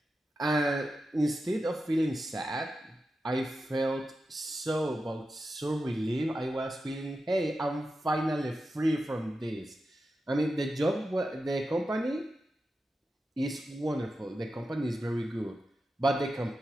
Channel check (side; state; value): both; normal; correlation 0.90